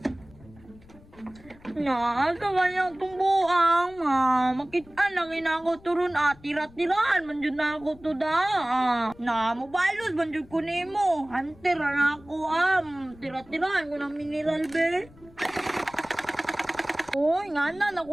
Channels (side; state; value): left; noise; rumble, 24 dB below the sound